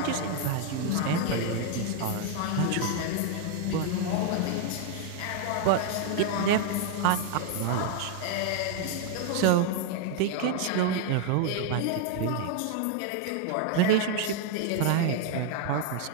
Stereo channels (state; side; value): different; both; correlation 0.00